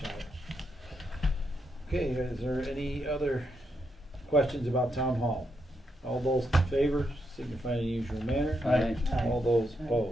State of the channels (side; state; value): both; normal; correlation 0.81